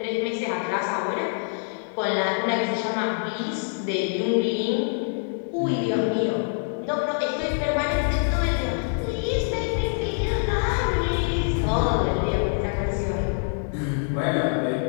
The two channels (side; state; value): right; silent; 62 dB below the other